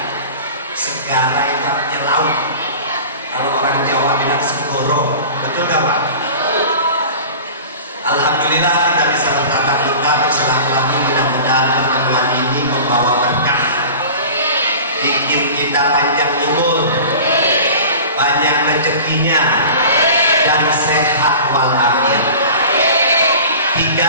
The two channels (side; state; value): both; inverted; correlation -0.38